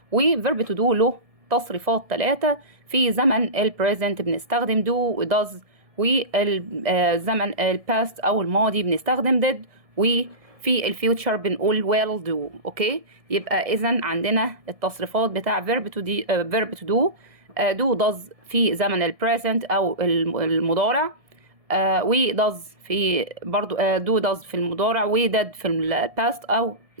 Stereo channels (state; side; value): late; left; 1.7 ms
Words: و verb to do له تصريفات 3. في زمن ال present بنستخدم do و does، والزمن ال past أو الماضي بنستخدم did، وفي الفيوتشر بنقول will do. اوكي، يبقى اذا عندنا التصريفات بتاع verb to do. do does في زمن ال present او المضارع، و does في برضو do does في المضارع، و did في ال past او